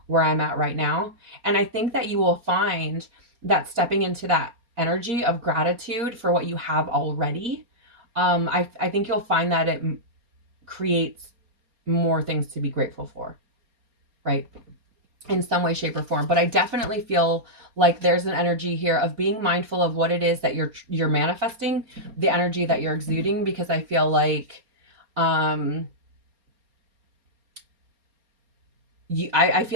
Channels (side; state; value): left; late; 4.3 ms